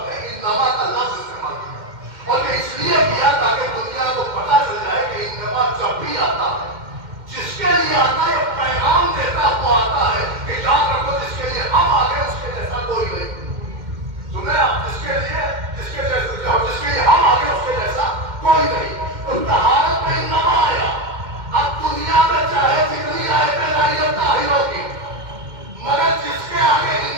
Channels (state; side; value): late; left; 2.1 ms